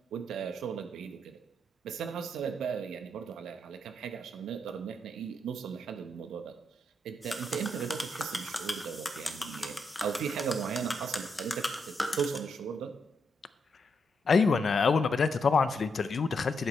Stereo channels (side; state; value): both; normal; correlation 0.80